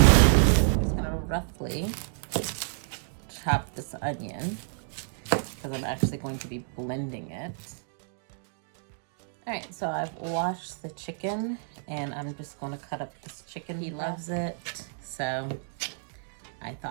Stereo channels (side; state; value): left; silent; digital silence